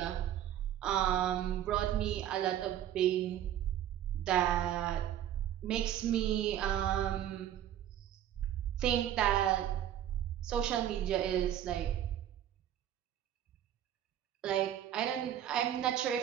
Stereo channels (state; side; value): quieter; left; 11.1 dB